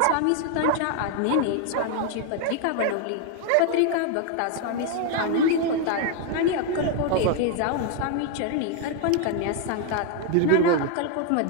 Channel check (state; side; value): different; both; correlation 0.01